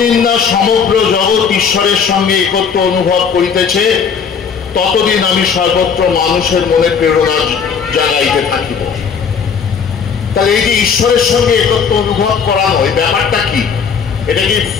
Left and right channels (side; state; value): right; quieter; 6.4 dB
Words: না সমগ্র জগৎ ঈশ্বরের সঙ্গে একত্র অনুভব করিতেছে ততদিন আমি সর্বত্র মানুষের মনে প্রেরণা জাগাইতে থাকিব। তাহলে এই যে ঈশ্বরের সঙ্গে একত্র অনুভব করানো, এই ব্যাপারটা কি? এটা কি